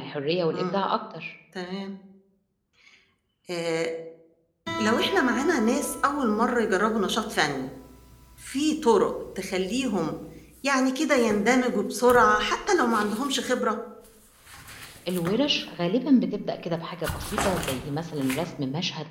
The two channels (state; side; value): identical; both; correlation 1.00